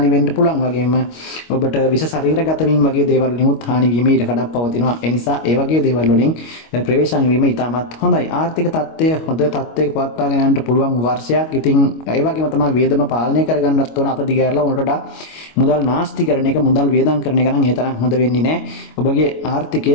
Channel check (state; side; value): late; right; 25 ms